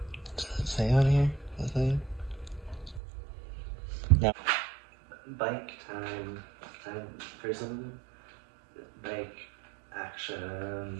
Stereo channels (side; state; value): left; drops out; at 3.0 s